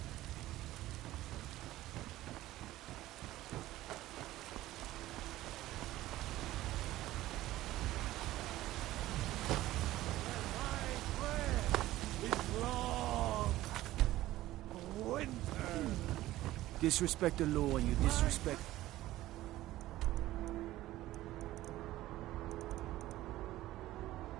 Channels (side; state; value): left; quieter; 15.7 dB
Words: Disrespect the law and you disrespect...